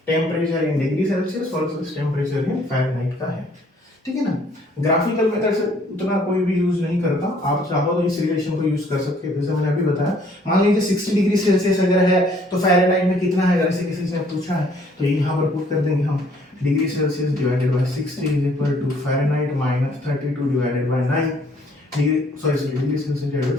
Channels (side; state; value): both; normal; correlation 0.62